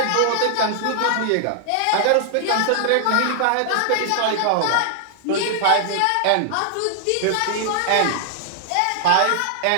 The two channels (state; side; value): different; both; correlation 0.00